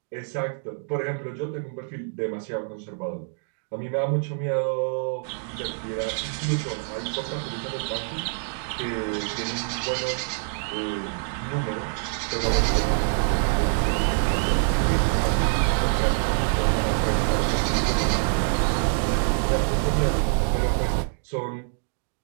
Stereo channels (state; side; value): silent; left; digital silence